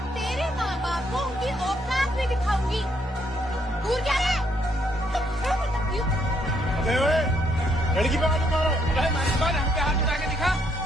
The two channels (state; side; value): normal; both; correlation 0.72